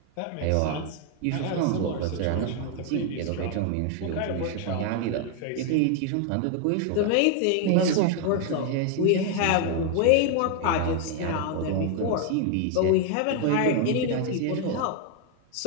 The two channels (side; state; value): both; different; correlation 0.00